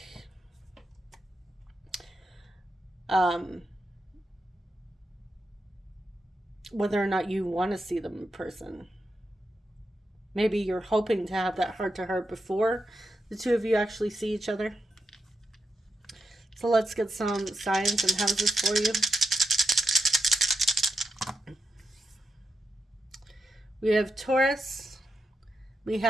whether or not you want to see them in person. Maybe you're hoping to have that heart-to-heart before the two of you actually see each other. So let's get some signs and houses for you. We have Taurus. We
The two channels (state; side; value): normal; both; correlation 0.86